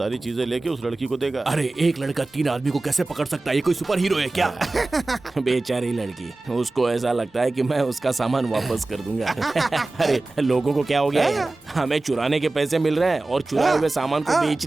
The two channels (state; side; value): quieter; left; 3.1 dB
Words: चीजें लेके उस लड़की को देगा। अरे एक लड़का 3 आदमी को कैसे पकड़ सकता है? ये कोई सुपर हीरो है क्या? बेचारी लड़की, उसको ऐसा लगता है कि मैं उसका सामान वापस कर दूंगा। अरे लोगों को क्या हो गया है? हमें चुराने के पैसे मिल रहे हैं और चुराए हुए सामान को